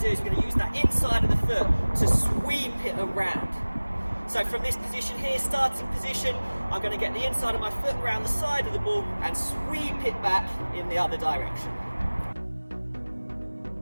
do is we're going to use that inside of the foot to sweep it around. So from this position here, starting position, I'm going to get the inside of my foot around the side of the ball and sweep it back in the other direction.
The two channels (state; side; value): inverted; both; correlation -1.00